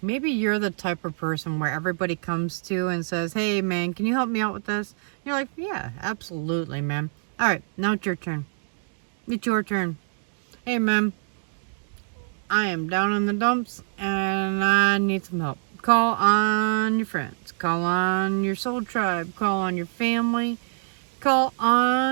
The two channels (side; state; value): left; silent; digital silence